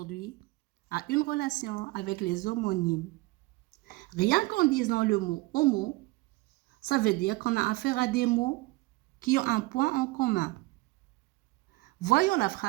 a une relation avec les homonymes. Rien qu'en disant le mot homo, ça veut dire qu'on a affaire à des mots qui ont un point en commun. Voyons la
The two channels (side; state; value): left; quieter; 21.6 dB